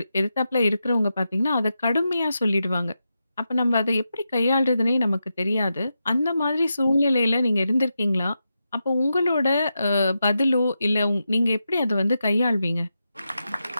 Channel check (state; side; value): inverted; both; correlation -0.88